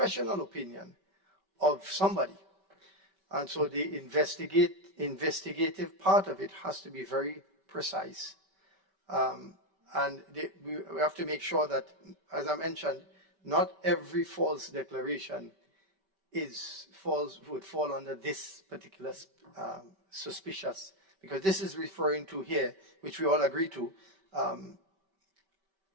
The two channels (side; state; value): left; late; 5.2 ms